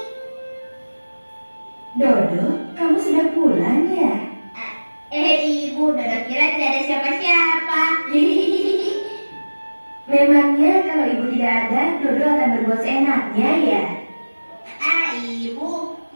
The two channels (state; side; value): inverted; both; correlation -1.00